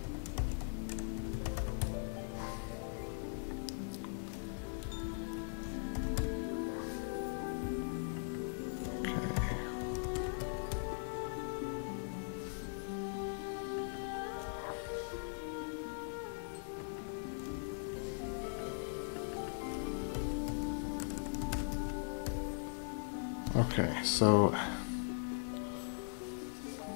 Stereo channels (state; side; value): silent; right; digital silence